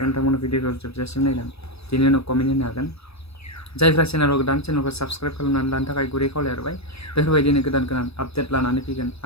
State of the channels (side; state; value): right; late; 0.78 ms